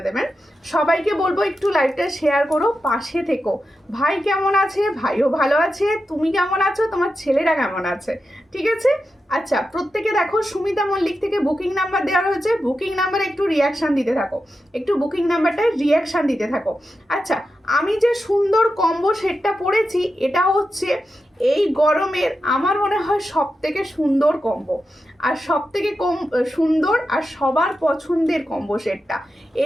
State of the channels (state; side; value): normal; both; correlation 0.89